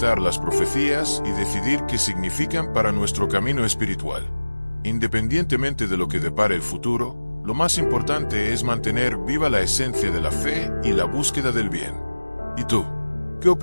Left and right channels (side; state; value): both; inverted; correlation -1.00